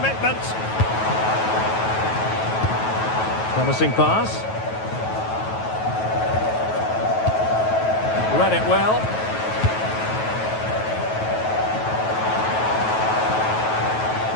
Promising pass. Read it well.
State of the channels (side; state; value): right; late; 9.2 ms